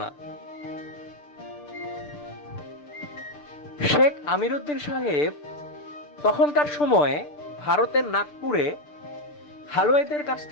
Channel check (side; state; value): right; late; 6.8 ms